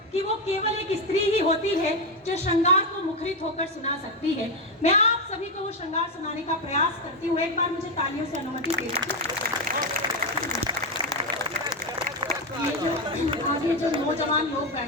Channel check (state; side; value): normal; both; correlation 0.08